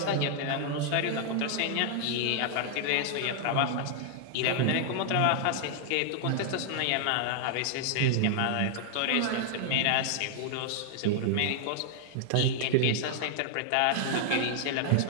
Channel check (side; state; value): both; different; correlation 0.00